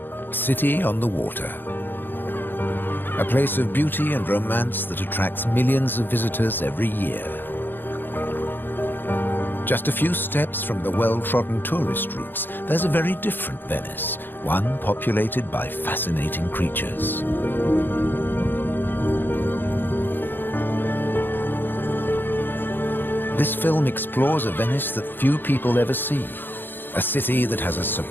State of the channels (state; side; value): late; right; 0.096 ms